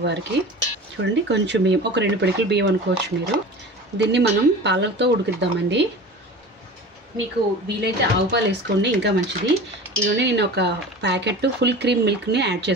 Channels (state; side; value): normal; both; correlation 0.36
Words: చూడండి కొంచెం బియ్యం, ఒక 2 పిడికిల బియ్యం అనుకోవచ్చు మీరు. దీన్ని మనం పాలతో ఉడికిద్దామండి. మీకు వీలైతే ఆవు పాలు వేసుకోండి, ఇంకా మంచిది. ఇదిగోండి నేను ఒక ప్యాకెట్ ఫుల్ క్రీమ్ మిల్క్ని యాడ్